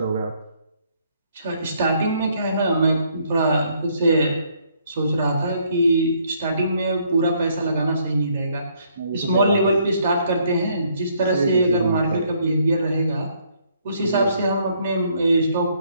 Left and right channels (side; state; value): both; inverted; correlation -0.68